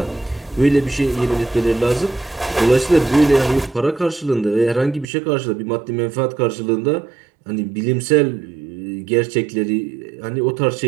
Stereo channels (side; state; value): left; drops out; at 5.1 s